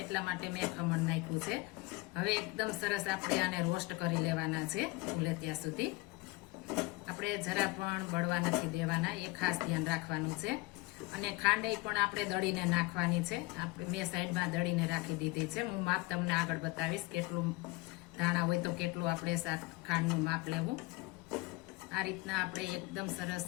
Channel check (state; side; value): quieter; right; 23.2 dB